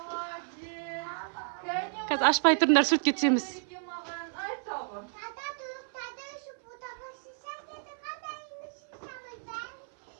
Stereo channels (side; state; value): left; silent; 56 dB below the other